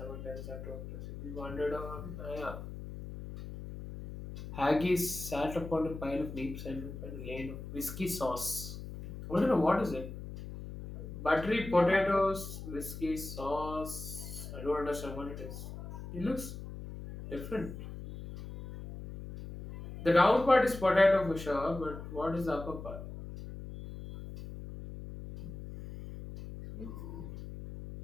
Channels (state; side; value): noise; left; hum, 10 dB below the sound